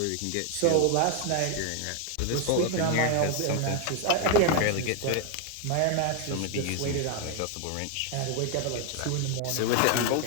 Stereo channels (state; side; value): different; both; correlation 0.01